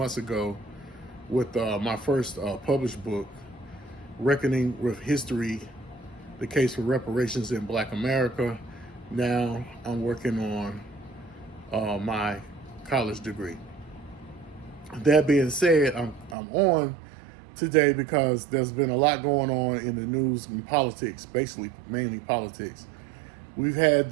ago with my first published book, Reckoning with History, The Case for Reparations in Black America. Now I'm working on my college degree. That being said, I'm on today because there's been a lot going on in the news and politics, basically mainly politics. We've had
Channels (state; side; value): drops out; left; at 16.4 s